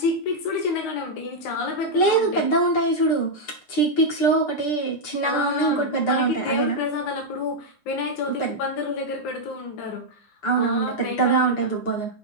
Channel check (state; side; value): late; right; 9.5 ms